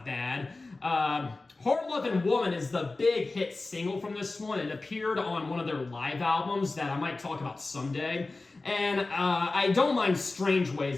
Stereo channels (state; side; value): quieter; right; 3.4 dB